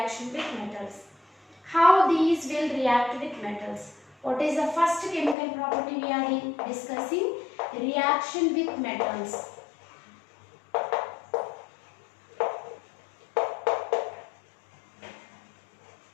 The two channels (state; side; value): drops out; right; at 5.4 s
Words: with metals. How these will react with metals? What is the first chemical property we are discussing? Reaction with metals.